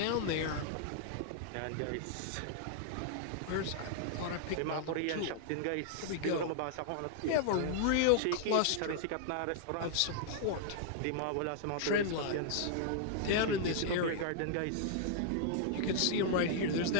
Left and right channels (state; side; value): different; both; correlation -0.01